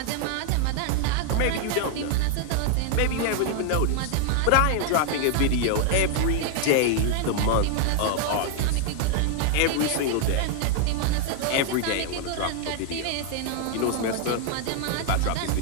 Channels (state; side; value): different; both; correlation 0.00